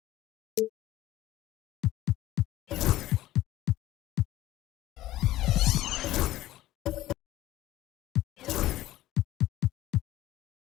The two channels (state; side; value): quieter; right; 15.2 dB